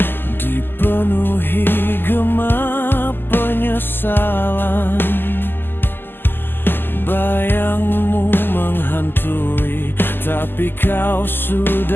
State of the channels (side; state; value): right; late; 0.096 ms